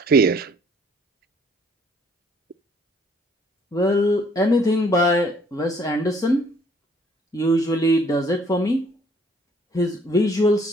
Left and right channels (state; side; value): normal; both; correlation 0.61